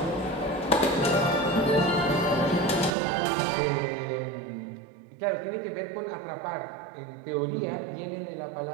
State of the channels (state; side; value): drops out; left; at 3.0 s